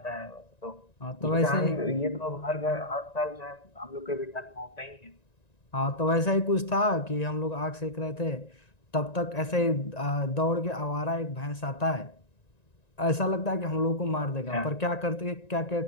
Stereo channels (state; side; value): late; right; 1.9 ms